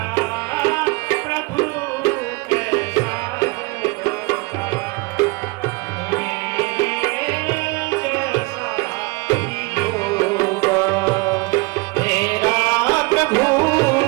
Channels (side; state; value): left; quieter; 26.2 dB